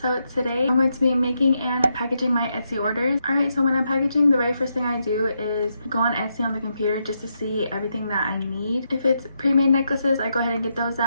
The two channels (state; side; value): inverted; both; correlation -0.83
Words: today I'm going to be making and packaging my Etsy orders. Alright, so when I'm packaging, the very first thing I do is go on Etsy on the computer just to see everything that I need. If it's pre-made necklaces, I go ahead and get those